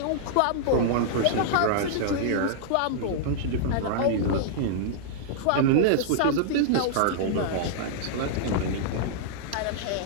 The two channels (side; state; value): both; different; correlation -0.01